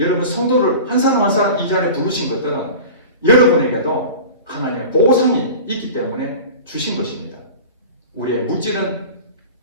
성도를 한 사람 한 사람 이 자리에 부르신 것들은 여러분에게도 하나님의 보상이 있기 때문에 주신 것입니다. 우리의 물질은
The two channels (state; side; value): inverted; both; correlation -0.36